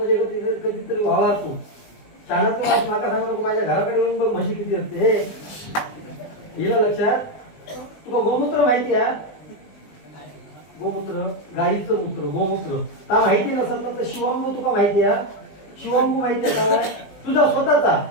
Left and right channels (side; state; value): right; late; 19 ms